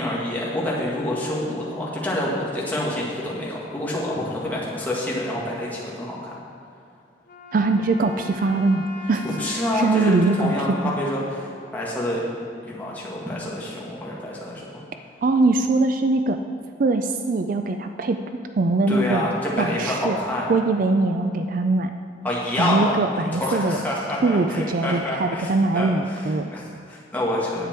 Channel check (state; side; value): normal; both; correlation 0.55